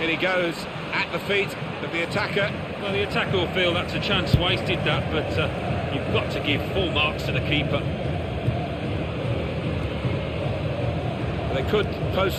he goes at the feet of the attacker. Well, the attacker will feel that's a chance wasted, that, but you've got to give full marks to the keeper. They could pose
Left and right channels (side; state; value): both; identical; correlation 1.00